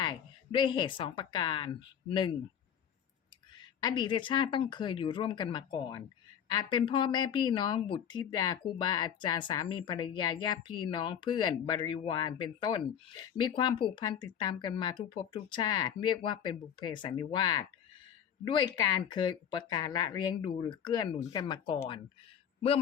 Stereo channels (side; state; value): right; quieter; 8.8 dB